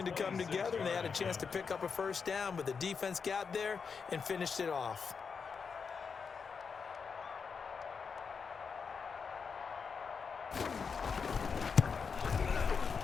to come together, and they had a chance to pick up a 1st down, but the defense got there and finished it off.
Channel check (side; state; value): right; quieter; 5.7 dB